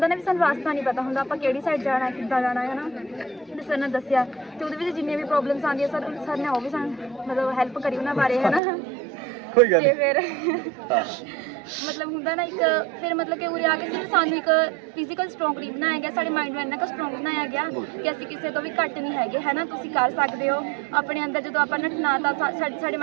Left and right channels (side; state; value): left; drops out; at 8.6 s